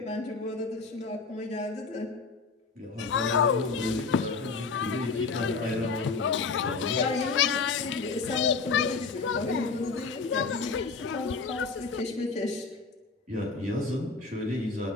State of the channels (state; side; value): quieter; right; 4.5 dB